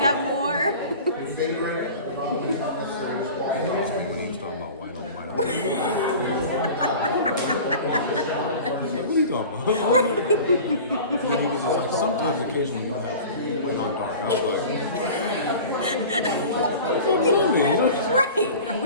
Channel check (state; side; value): inverted; both; correlation -0.39